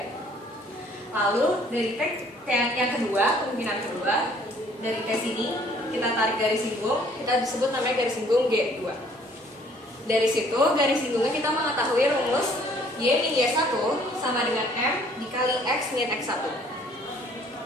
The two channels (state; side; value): normal; both; correlation 0.59